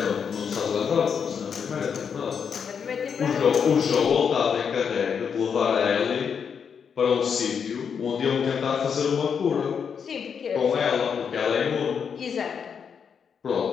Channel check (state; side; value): quieter; right; 6.8 dB